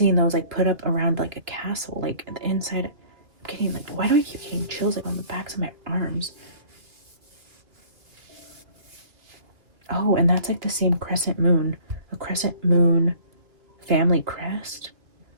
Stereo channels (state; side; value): late; left; 2.2 ms